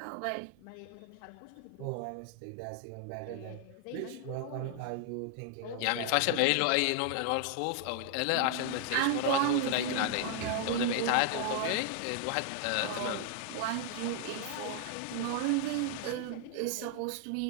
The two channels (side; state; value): both; different; correlation 0.00